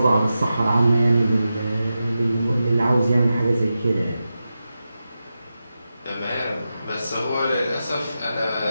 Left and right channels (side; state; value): both; inverted; correlation -0.91